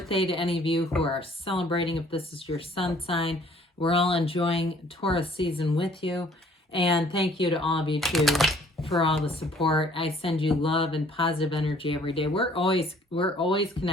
to any of you who are celebrating if this is your sun sign. We're all enjoying Taurus season with you. And thank you to all of you too for all the support. I send you love and positive energy every day. We're always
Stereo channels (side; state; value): both; normal; correlation 0.58